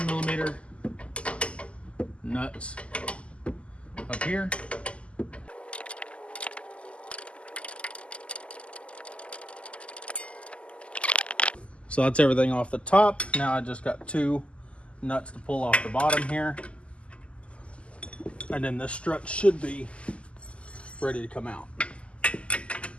millimeter nuts up here. So that's everything off the top. Now I just got 2 nuts to pull off the bottom here. And then this strut should be ready to come out.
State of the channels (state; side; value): late; right; 0.056 ms